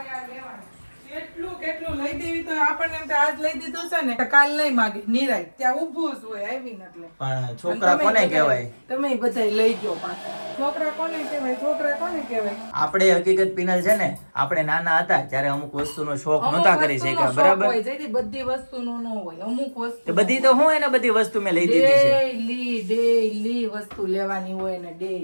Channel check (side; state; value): both; inverted; correlation -1.00